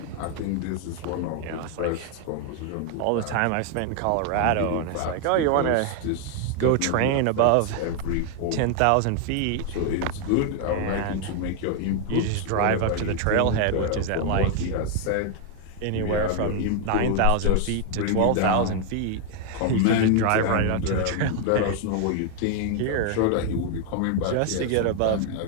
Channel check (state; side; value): different; both; correlation 0.00